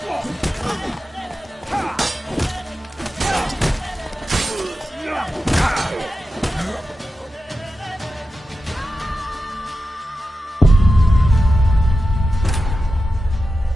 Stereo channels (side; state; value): both; normal; correlation 0.91